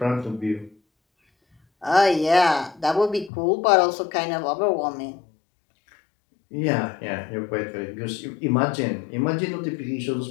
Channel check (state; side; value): drops out; right; at 3.3 s